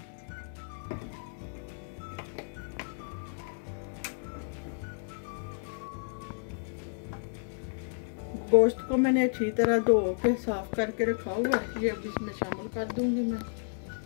गोश्त को मैंने अच्छी तरह धो के साफ करके रखा हुआ है, ये अब इसमें शामिल कर दूंगी मैं।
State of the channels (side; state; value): right; silent; digital silence